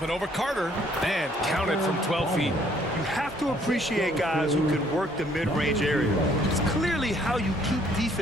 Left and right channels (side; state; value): both; normal; correlation 0.63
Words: and over Carter. And counted from 12 feet. You have to appreciate guys who can work the mid-range area. It's clearly how you keep